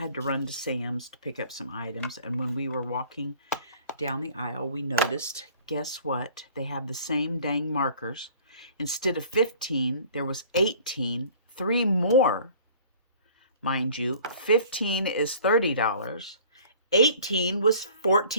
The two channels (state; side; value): inverted; both; correlation -0.49